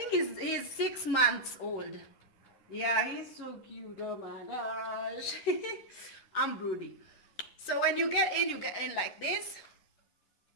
he's 6 months old. Yeah, he's so cute. Oh my gosh. I'm broody. So when you get in like this.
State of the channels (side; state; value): right; late; 10 ms